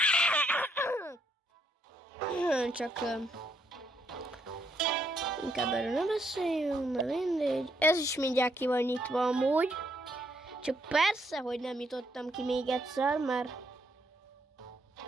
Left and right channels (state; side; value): normal; both; correlation 0.73